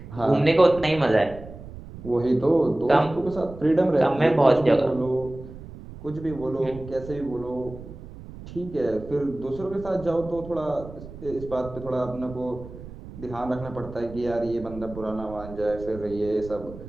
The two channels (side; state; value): right; noise; rumble, 15 dB below the sound